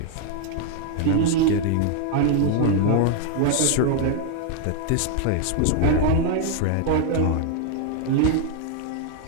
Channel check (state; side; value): different; both; correlation 0.00